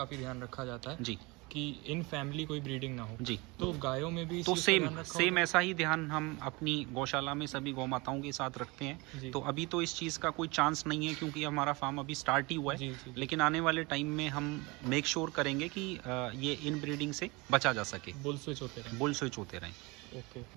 ध्यान रखा जाता है जी, कि इन फैमिली कोई ब्रीडिंग ना हो जी। तो गायों में भी तो सेम ऐसा ही ध्यान हम अपनी गौशाला में सभी गौ माताओं के साथ रखते हैं। तो अभी तो इस चीज़ का कोई चांस नहीं है क्योंकि हमारा फार्म अभी स्टार्ट ही हुआ है। लेकिन आने वाले टाइम में हम मेक श्योर करेंगे कि ये इन ब्रीडिंग से बचा जा सके, बुल स्विच होते रहें। बुल स्विच होते रहें। ओके।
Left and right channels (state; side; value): quieter; left; 25.6 dB